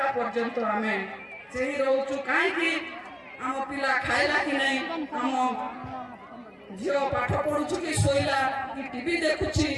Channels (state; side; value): identical; both; correlation 1.00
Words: ପର୍ଯ୍ୟନ୍ତ ଆମେ ସେହି ରହୁଛୁ। କାହିଁକି? ଆମ ପିଲା ଖାଇଲା କି ନାହିଁ, ଆମ ଝିଅ ପାଠ ପଢୁଛୁ କି ଶୋଇଲା କି ଟିଭି ଦେଖୁଛି,